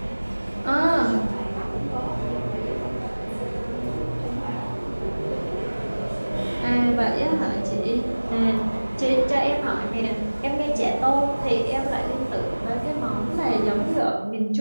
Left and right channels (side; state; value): both; inverted; correlation -1.00